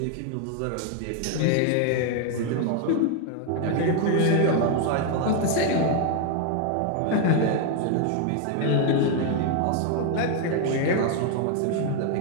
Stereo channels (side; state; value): both; different; correlation 0.01